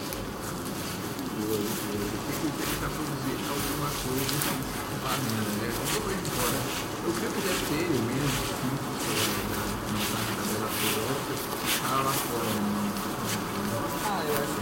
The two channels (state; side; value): identical; both; correlation 1.00